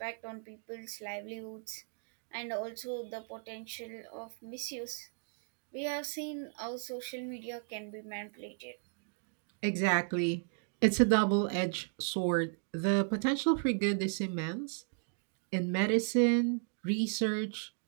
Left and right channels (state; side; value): silent; left; 54 dB below the other